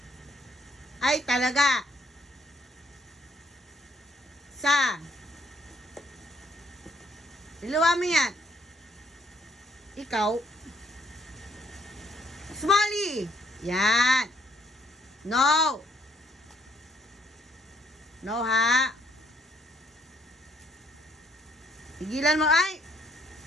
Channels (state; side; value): normal; both; correlation 0.67